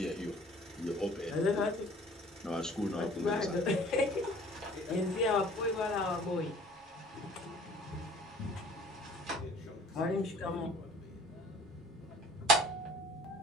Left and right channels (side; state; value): both; normal; correlation 0.50